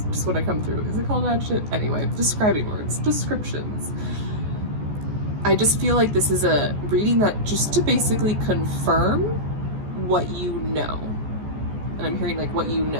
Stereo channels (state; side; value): late; left; 14 ms